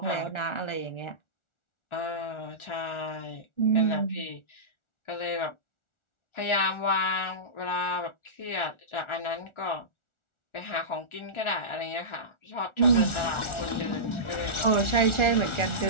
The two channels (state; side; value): late; right; 1.4 ms